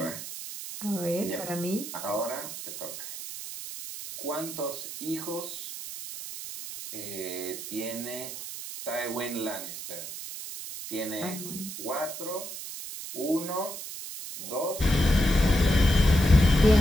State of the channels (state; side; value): noise; right; hiss, 9 dB below the sound